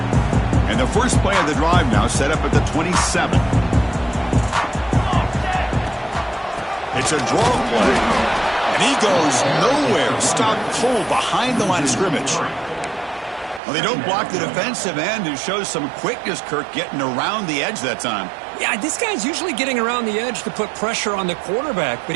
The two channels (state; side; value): drops out; left; at 13.6 s